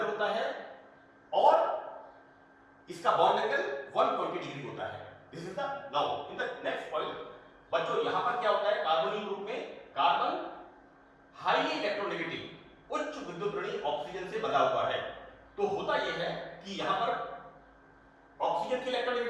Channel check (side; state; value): both; identical; correlation 1.00